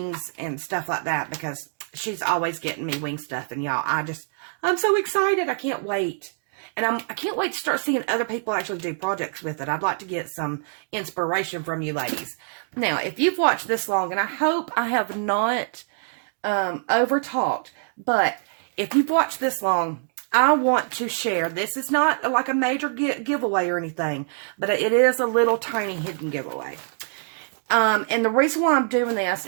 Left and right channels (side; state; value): left; silent; digital silence